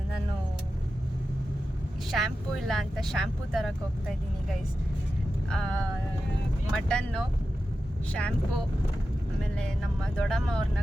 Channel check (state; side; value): normal; both; correlation 0.92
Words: ನಾನು ಶ್ಯಾಂಪೂ ಇಲ್ಲ ಅಂತ ಶ್ಯಾಂಪೂ ತರಕ್ಕೆ ಹೋಗ್ತಾ ಇದ್ದೀನಿ ಗೈಸ್. ಮಟನ್ನು, ಶ್ಯಾಂಪೂ, ಆಮೇಲೆ ನಮ್ಮ ದೊಡ್ಡಮ್ಮ ಅವ್ರನ್ನ